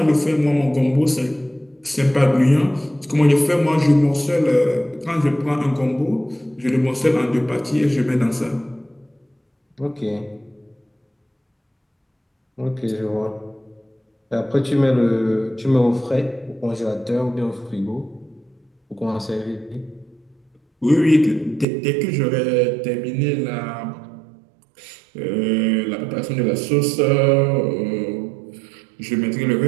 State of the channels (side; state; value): left; drops out; at 21.7 s